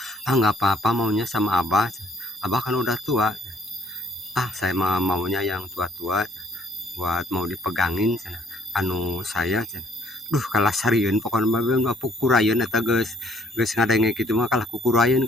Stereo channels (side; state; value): both; normal; correlation 0.63